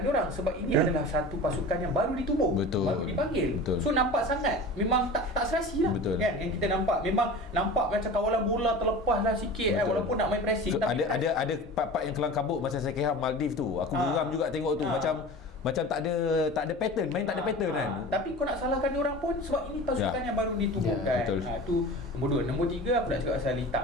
sebab ini adalah satu pasukan yang baru ditubuh, baru dipanggil. So nampak sangat memang tak serasi lah. Kan yang kita nampak, memang nampak macam kawalan bola terlepas lah sikit walaupun nak main pressing. Ada part-part yang kelang kabut masa saya kira Maldives tu. Aku geram juga tengok tu, macam tak ada pattern, main tak ada pattern kan. Tapi kau nak salahkan dia orang pun sebab ini pasukan yang baru ditubuhkan. Tu nombor 2. Nombor 3 aku nak cakap pasal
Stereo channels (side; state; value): both; normal; correlation 0.35